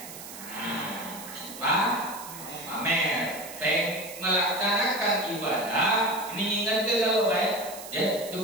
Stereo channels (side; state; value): right; noise; hiss, 13 dB below the sound